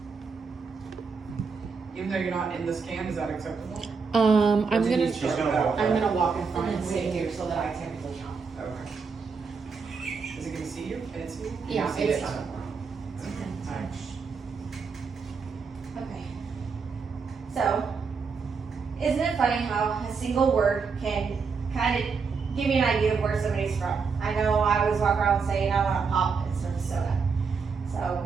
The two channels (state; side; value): quieter; left; 5.3 dB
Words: Even though you're not in this can, is that acceptable? I'm Or do you gonna. need to start back? I'm gonna walk in front and sit here so that I technically count. Okay. Is it gonna see you? Can it see you? Can Yeah, you see it's it? fine. Alright. Okay. So, isn't it funny how a single word can kind of give you an idea of where somebody's from? I know I always walk around saying I want to pop instead of soda.